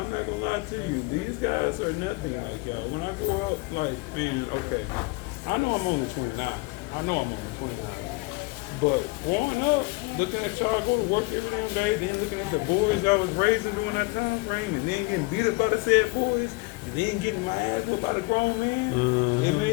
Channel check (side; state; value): right; quieter; 25.7 dB